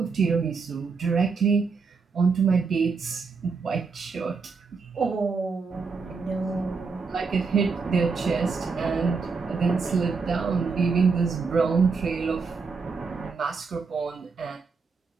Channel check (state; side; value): quieter; left; 4.8 dB